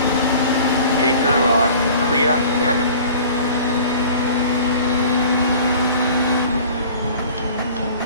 Keep to the right. Clear.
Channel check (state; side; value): inverted; both; correlation -0.45